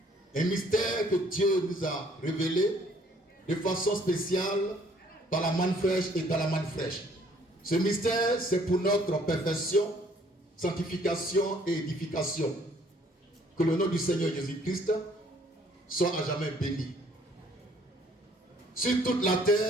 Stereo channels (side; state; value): both; normal; correlation 0.61